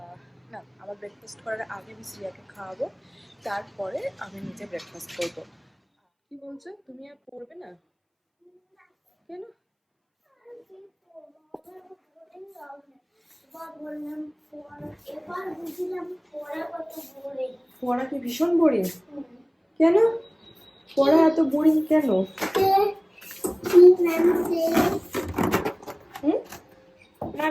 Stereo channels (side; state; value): both; identical; correlation 1.00